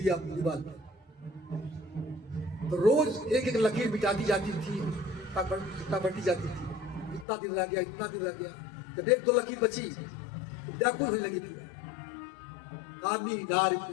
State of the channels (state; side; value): drops out; right; at 7.2 s